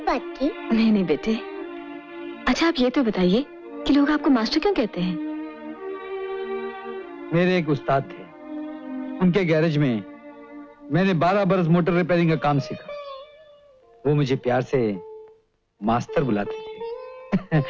बात की? नहीं नहीं बेटे। अच्छा आप ये तो बताइए कि लोग आपको मास्टर क्यों कहते हैं? मेरे एक उस्ताद थे, उनके गैरेज में मैंने 12 बरस मोटर रिपेयरिंग का काम सीखा। वो मुझे प्यार से मास्टर बुलाते थे।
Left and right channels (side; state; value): both; identical; correlation 1.00